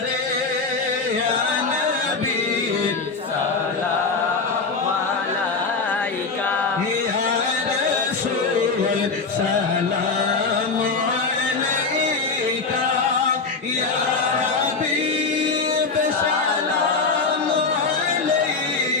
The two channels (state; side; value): quieter; right; 4.3 dB